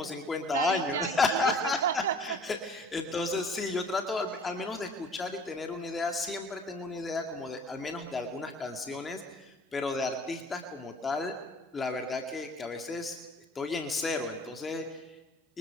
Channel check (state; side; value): normal; both; correlation 0.50